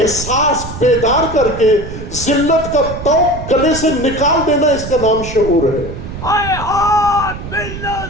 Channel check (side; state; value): right; noise; rumble, 9 dB below the sound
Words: بیدار کر کے ذلت کا طوق گلے سے نکال دینا، اس کا نام شعور ہے. حیات منا